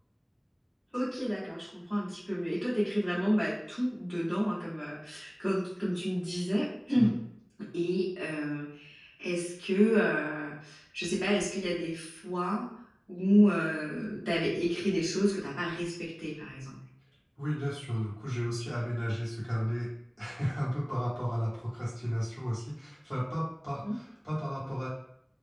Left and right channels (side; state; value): both; identical; correlation 1.00